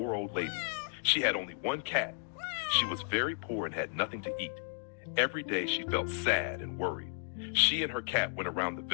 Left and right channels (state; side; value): silent; right; digital silence